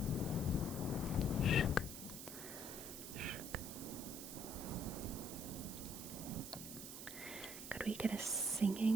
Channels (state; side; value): noise; right; hiss, 8 dB below the sound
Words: Shook. Shook. Could we get a